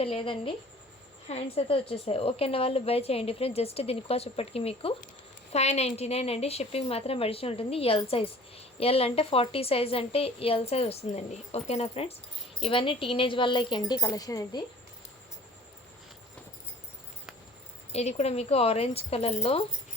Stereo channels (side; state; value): both; normal; correlation 0.48